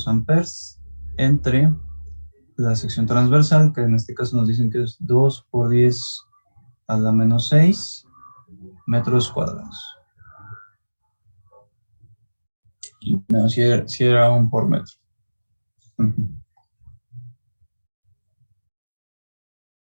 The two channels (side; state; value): both; inverted; correlation -1.00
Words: amperes entre la sección transversal, que en este caso nos dicen que es 2 por 10 a la menos 6 metros cuadrados. Y no, si era un por metro. Uh-huh.